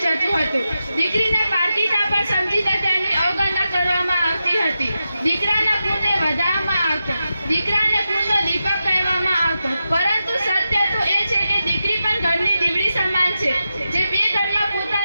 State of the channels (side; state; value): both; inverted; correlation -0.90